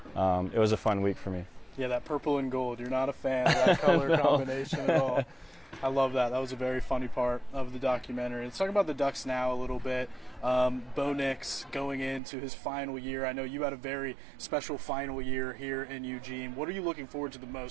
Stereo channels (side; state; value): left; drops out; at 12.2 s